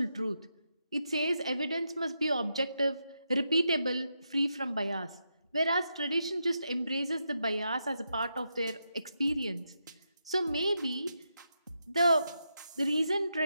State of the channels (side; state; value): both; inverted; correlation -0.84